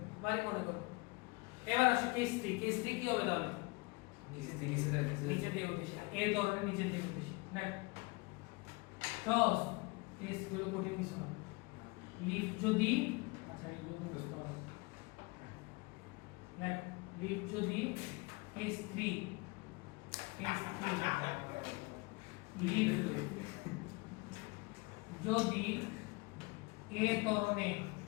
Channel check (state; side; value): quieter; right; 26.2 dB